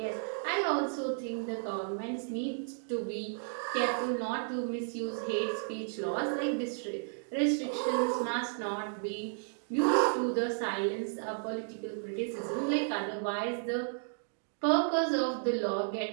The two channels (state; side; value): silent; left; digital silence